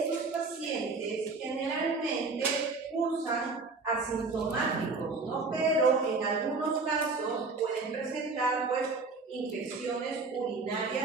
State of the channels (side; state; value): left; quieter; 3.9 dB